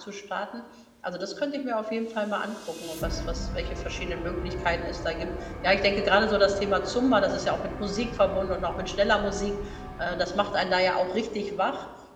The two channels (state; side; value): identical; both; correlation 1.00